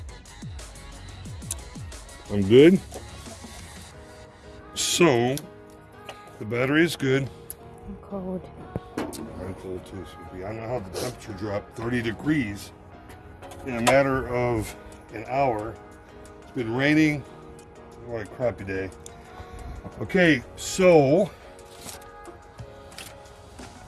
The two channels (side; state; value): both; identical; correlation 1.00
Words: I'm good. So, the battery is good. I'm cold. I'm cold too, Sophie. I don't know how the temperature dropped 30 degrees in a matter of an hour. It's been raining. What a crappy day. Okay, so